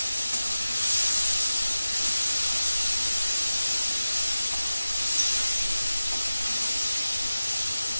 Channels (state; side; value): inverted; both; correlation -0.95